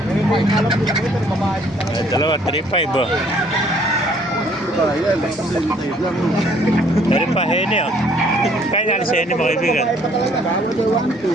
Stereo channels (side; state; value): both; normal; correlation 0.61